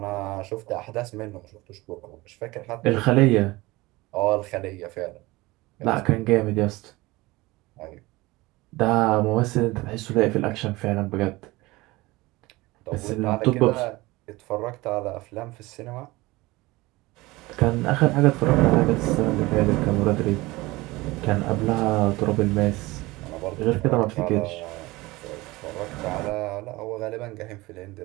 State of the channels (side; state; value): left; quieter; 21.0 dB